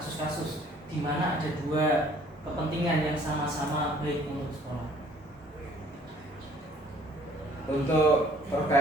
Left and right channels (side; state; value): both; normal; correlation 0.58